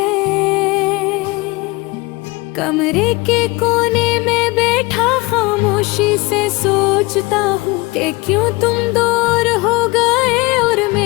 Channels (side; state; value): right; quieter; 23.5 dB